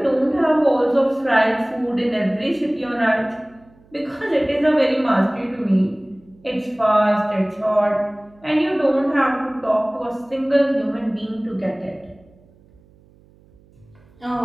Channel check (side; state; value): right; noise; hum, 29 dB below the sound